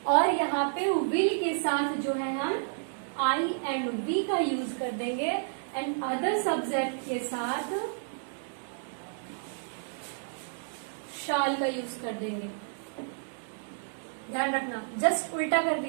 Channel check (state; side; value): silent; left; digital silence